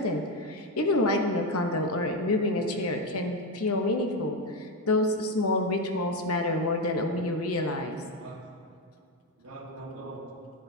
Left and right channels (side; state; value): both; normal; correlation 0.10